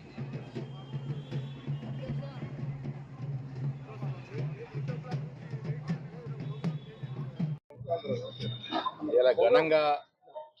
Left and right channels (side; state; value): both; identical; correlation 1.00